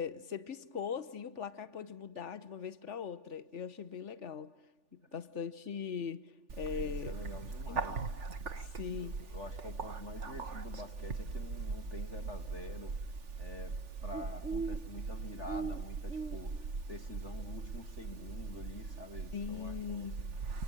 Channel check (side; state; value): left; late; 3.4 ms